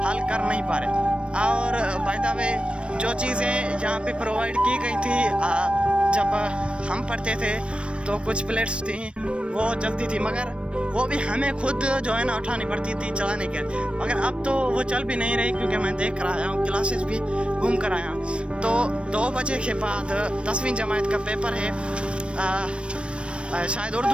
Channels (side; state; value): left; late; 0.059 ms